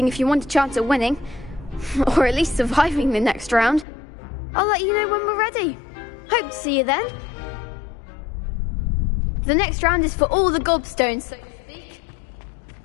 if you want a chance at winning, or at least surviving the next round. I'll let you know when we're ready. Hope to see you then. The next round is for all the gobstones, so to speak.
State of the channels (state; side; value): drops out; right; at 3.9 s